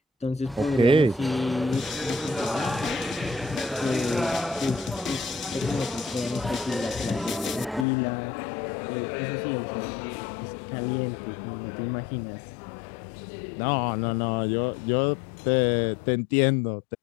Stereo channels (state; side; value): drops out; right; at 7.9 s